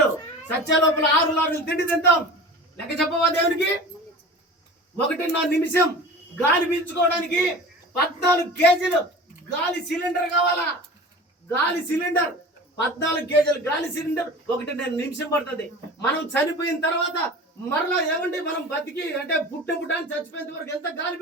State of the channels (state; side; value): normal; both; correlation 0.37